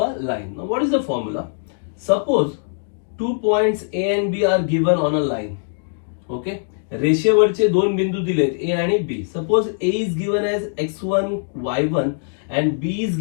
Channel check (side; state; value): right; silent; digital silence